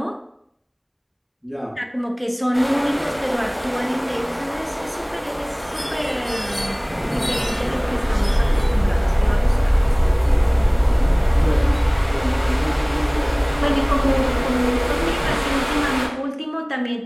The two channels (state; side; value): identical; both; correlation 1.00